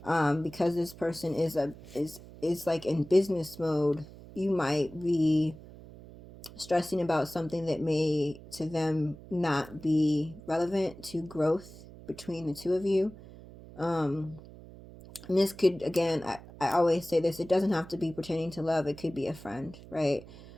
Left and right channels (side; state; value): right; noise; hum, 18 dB below the sound